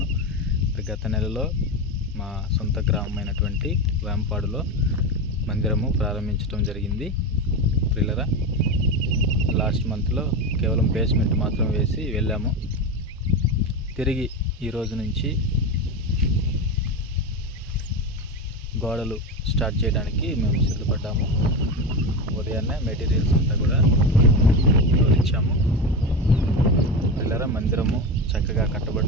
గత నెలలో మా సొంత గ్రామమైనటువంటి వేంపాడులో మందిరము ప్రారంభించడం జరిగింది. పిల్లరా, లాస్ట్ మంత్లో కేవలం బేస్మెంట్ మాత్రం వేసి వెళ్ళాము. తిరిగి ఈరోజు నుంచి గోడలు స్టార్ట్ చేయడానికి మేము సిద్ధపడ్డాము. ఉదయాన్నే మెటీరియల్స్ అంతా కూడా తోలించాము. పిల్లరా, మందిరము చక్కగా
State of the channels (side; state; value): both; normal; correlation 0.18